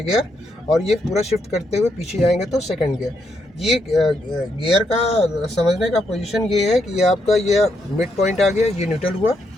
गियर और ये पूरा शिफ्ट करते हुए पीछे जाएंगे तो सेकंड गियर। ये गियर का समझने का पोजीशन ये है कि ये आपका ये मिड पॉइंट आ गया, ये न्यूट्रल हुआ।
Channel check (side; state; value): both; normal; correlation 0.78